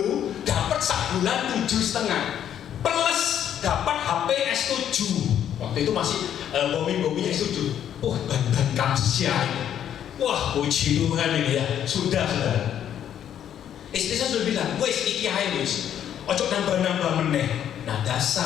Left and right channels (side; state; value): right; quieter; 9.9 dB